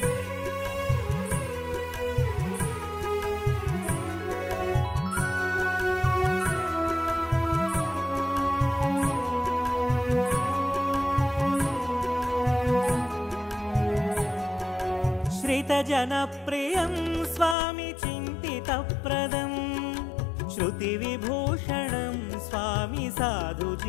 श्रितजनप्रियं स्वामी चिन्तितप्रदं श्रुतिविभूषणं स्वामी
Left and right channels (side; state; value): right; drops out; at 17.6 s